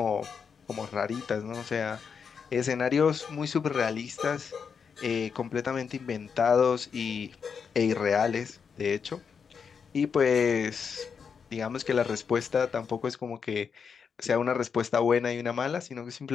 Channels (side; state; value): right; quieter; 6.3 dB